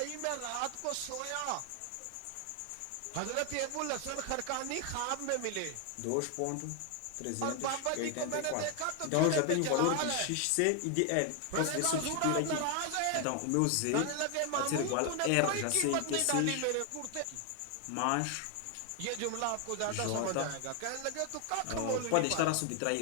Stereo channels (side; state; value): both; different; correlation 0.00